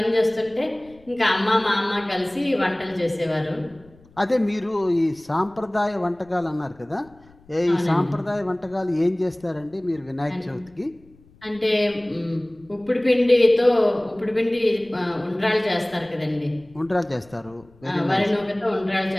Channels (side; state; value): left; noise; rumble, 27 dB below the sound